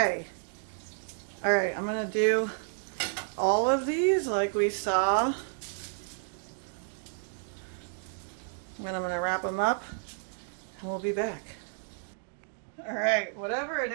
All right, I'm gonna do all of these like we saw. Then I'm gonna wrap them up and we'll be back. All right, whatever it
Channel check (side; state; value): left; silent; digital silence